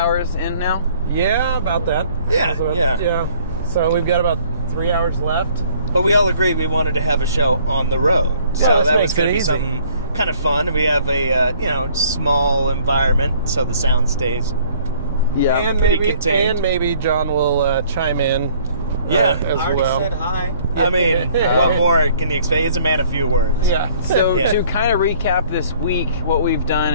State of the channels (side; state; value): both; inverted; correlation -0.58